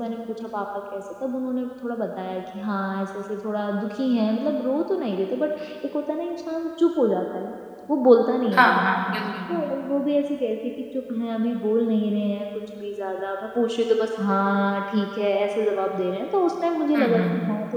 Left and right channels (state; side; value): identical; both; correlation 1.00